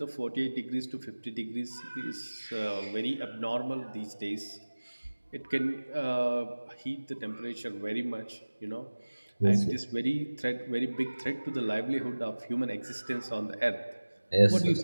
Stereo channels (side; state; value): both; inverted; correlation -1.00